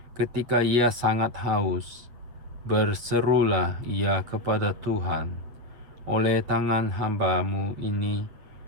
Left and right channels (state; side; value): late; left; 8.5 ms